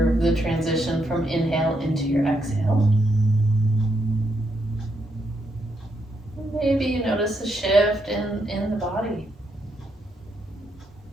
the transition from inhale into your exhale. Maybe you notice a shift in the body.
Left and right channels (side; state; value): both; normal; correlation 0.78